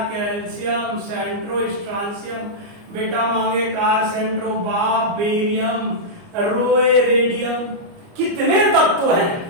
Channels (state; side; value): late; left; 29 ms